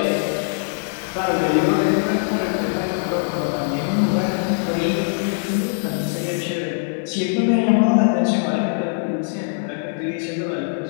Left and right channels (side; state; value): right; silent; digital silence